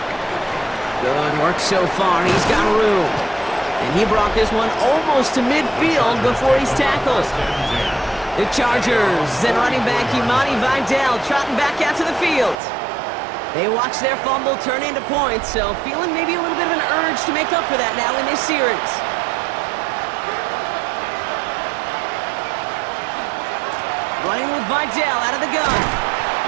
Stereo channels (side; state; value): left; drops out; at 12.6 s